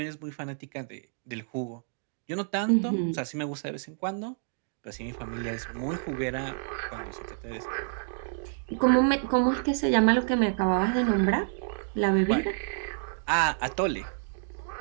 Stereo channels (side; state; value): left; silent; digital silence